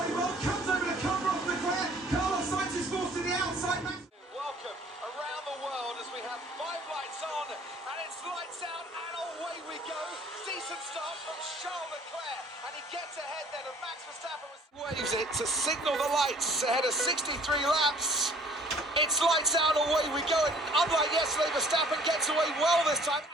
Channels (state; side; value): normal; both; correlation 0.54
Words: well, comes over to cover off Leclerc. Carlos Sainz is forced to the outside. Welcome around the world as we have 5 lights on, and it's lights out and away we go. Decent start from Charles Leclerc, and he gets ahead then of Max Verstappen. Waves it to signal the lights ahead of 63 laps. It's lights out and away we go, and unlike yesterday, Verstappen gets away well this time.